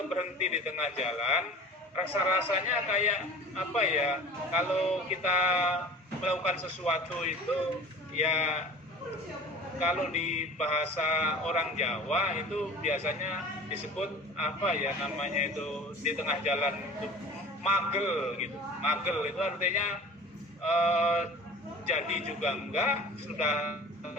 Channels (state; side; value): normal; both; correlation 0.40